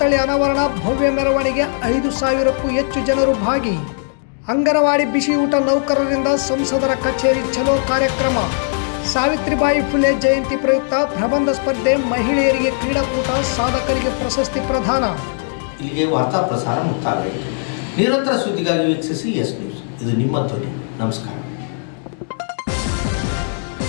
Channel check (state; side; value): silent; right; digital silence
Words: ಅನಾವರಣ, ಭವ್ಯ ಮೆರವಣಿಗೆ, 5,000ಕ್ಕೂ ಹೆಚ್ಚು ಜನರು ಭಾಗಿ. ಅಂಗನವಾಡಿ ಬಿಸಿ ಊಟ ನೌಕರರಿಂದ ಸಂಸದರ ಕಚೇರಿ ಚಲೋ ಕಾರ್ಯಕ್ರಮ. ಸಾವಿತ್ರಿಬಾಯಿ ಫುಲೆ ಜಯಂತಿ ಪ್ರಯುಕ್ತ ಪ್ರಬಂಧ ಸ್ಪರ್ಧೆ, ಮಹಿಳೆಯರಿಗೆ ಕ್ರೀಡಾಕೂಟ, ಸಾಧಕರಿಗೆ ಪ್ರಶಸ್ತಿ ಪ್ರದಾನ. ಇಲ್ಲಿಗೆ ವಾರ್ತಾ ಪ್ರಸಾರ ಮುಕ್ತಾಯವಾಯಿತು. ನಿರಂತರ ಸುದ್ದಿಗಾಗಿ ವೀಕ್ಷಿಸಿ ಎಸ್ ನ್ಯೂಸ್. ಇದು ನಿಮ್ಮ ಧ್ವನಿ. ನಮಸ್ಕಾರ.